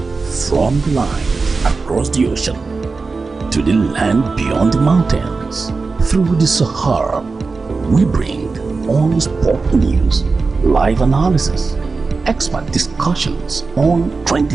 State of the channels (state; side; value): quieter; left; 4.2 dB